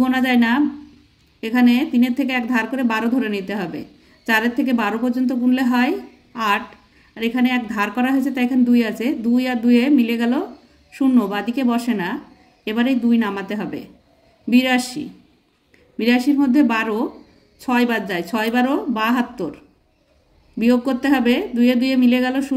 গোনা যায় না, এখানে 3-এর থেকে 1 ধার করে 12 ধরে নিতে হবে। 4-এর থেকে 12 পর্যন্ত গুনলে হয় 8, আর এখানে 1 ধার করা হয়েছে তাই এখানে 2 আছে, 2 আর 2 মিলে গেল 0, বাদিকে বসে না। এবারে 2 নামাতে হবে। 82, 82-এর মধ্যে 12 6 বাদ যায়, 6 12 72 বিয়োগ করতে হবে। 2 2 মিলে গেল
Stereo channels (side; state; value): both; identical; correlation 1.00